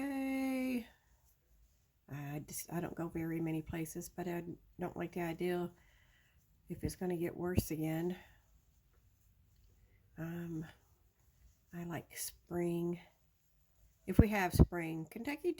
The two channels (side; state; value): both; identical; correlation 1.00